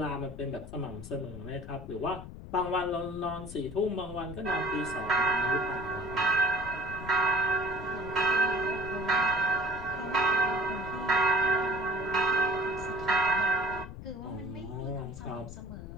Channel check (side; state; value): left; noise; rumble, 12 dB below the sound